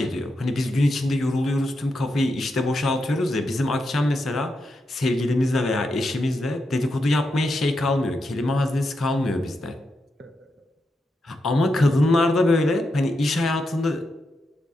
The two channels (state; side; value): normal; both; correlation 0.85